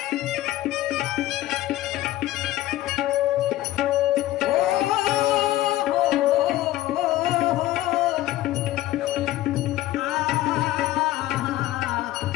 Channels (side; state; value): right; quieter; 15.3 dB